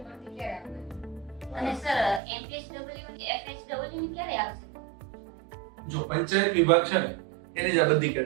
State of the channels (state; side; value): drops out; left; at 2.2 s